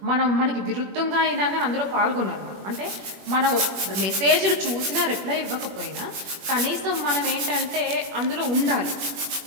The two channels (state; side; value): late; left; 21 ms